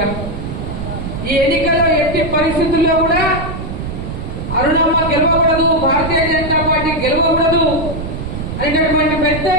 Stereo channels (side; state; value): right; noise; rumble, 6 dB below the sound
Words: ఈ ఎన్నికల్లో ఎట్టి పరిస్థితుల్లో కూడా అరుణమ్మ గెలవకూడదు, భారతీయ జనతా పార్టీ గెలవకూడదు అనేటటువంటి పెద్ద